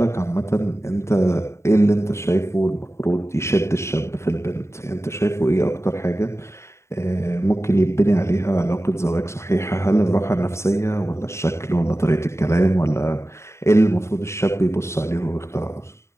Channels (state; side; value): late; right; 0.13 ms